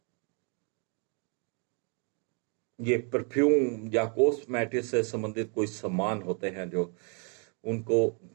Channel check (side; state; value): left; quieter; 39.4 dB